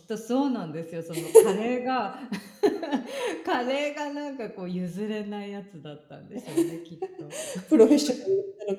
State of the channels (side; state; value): both; identical; correlation 1.00